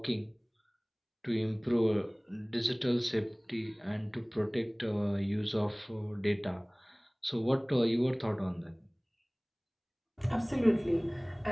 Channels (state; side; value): identical; both; correlation 1.00